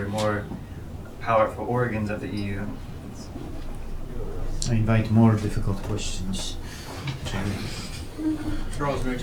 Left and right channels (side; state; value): both; identical; correlation 1.00